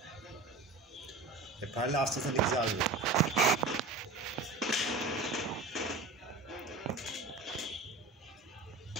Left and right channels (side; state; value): left; quieter; 3.7 dB